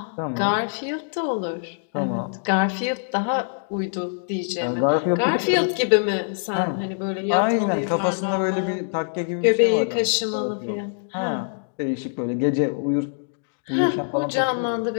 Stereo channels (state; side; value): silent; right; digital silence